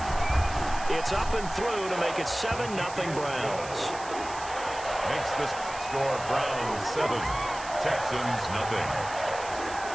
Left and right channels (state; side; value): noise; right; hiss, 14 dB below the sound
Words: It's up and through to make it 7-0 Browns. Makes the score Browns 7, Texans nothing.